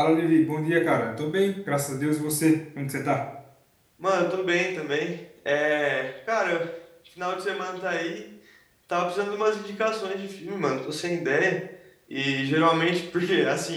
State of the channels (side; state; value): both; identical; correlation 1.00